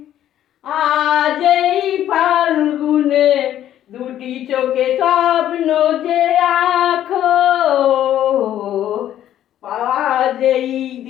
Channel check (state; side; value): quieter; right; 11.6 dB